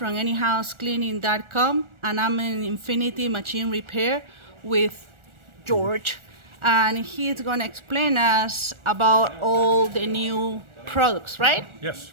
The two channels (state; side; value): late; left; 1.4 ms